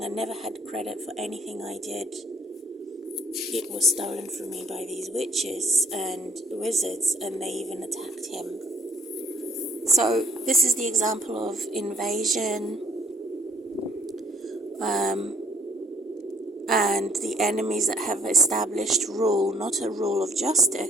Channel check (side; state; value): both; normal; correlation 0.62